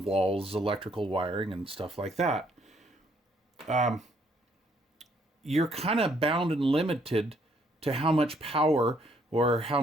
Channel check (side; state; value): both; normal; correlation 0.68